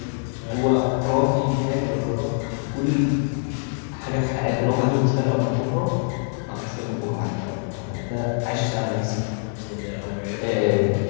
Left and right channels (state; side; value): silent; right; 58 dB below the other